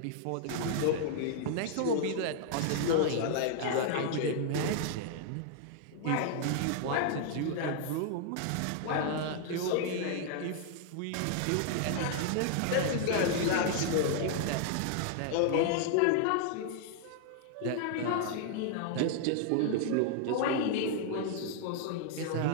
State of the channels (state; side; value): different; both; correlation 0.00